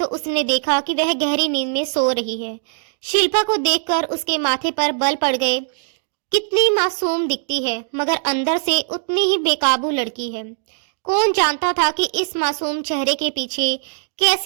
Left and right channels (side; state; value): left; silent; digital silence